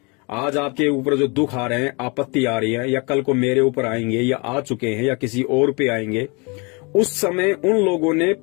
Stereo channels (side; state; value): right; quieter; 30.4 dB